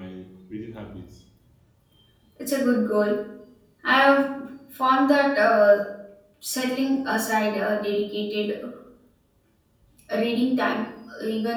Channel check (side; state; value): both; identical; correlation 1.00